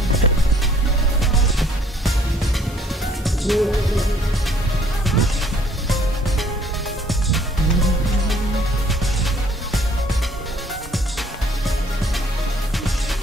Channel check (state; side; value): normal; both; correlation 0.60